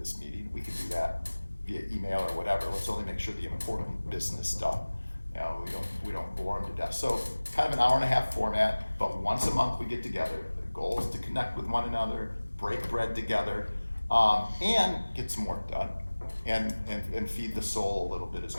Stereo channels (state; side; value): inverted; both; correlation -1.00